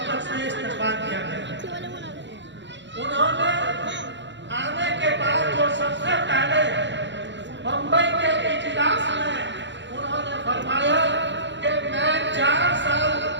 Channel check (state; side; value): late; left; 0.53 ms